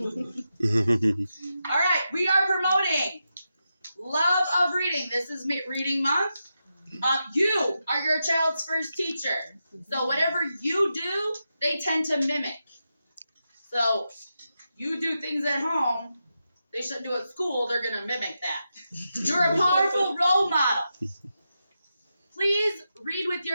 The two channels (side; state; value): both; inverted; correlation -0.88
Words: All right, we are promoting love of reading. This is reading month. You are your child's first teacher. So whatever you do, they tend to mimic. So you do things at home they shouldn't do at school, they're going to mimic that. You're a powerful role model. Please read with